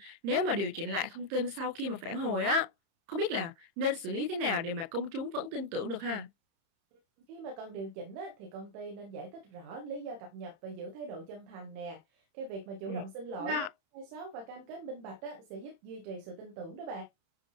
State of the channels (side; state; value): left; late; 31 ms